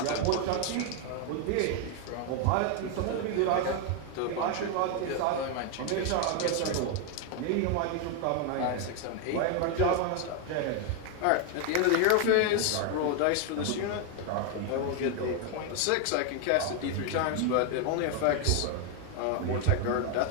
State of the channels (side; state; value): both; different; correlation 0.01